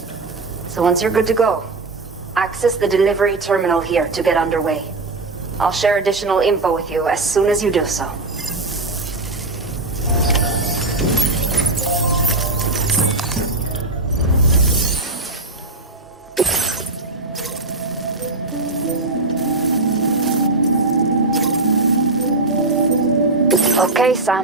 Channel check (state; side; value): quieter; left; 3.1 dB